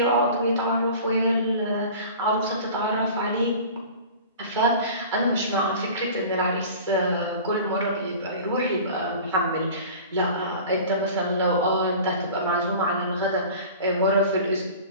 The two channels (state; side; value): inverted; both; correlation -0.40